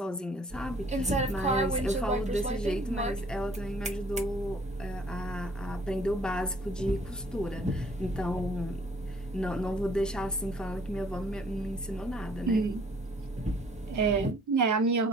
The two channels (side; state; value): both; normal; correlation 0.58